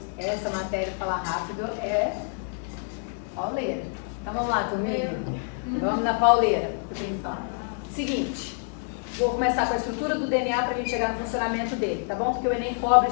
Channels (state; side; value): silent; right; 60 dB below the other